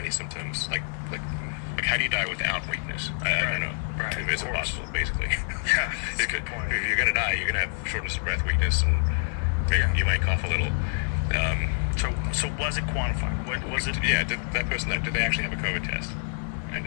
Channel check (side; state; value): right; silent; digital silence